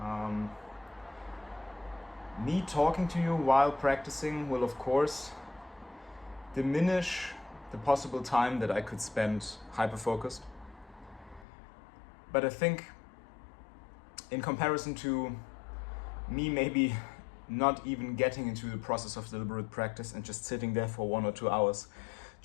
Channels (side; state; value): right; drops out; at 11.5 s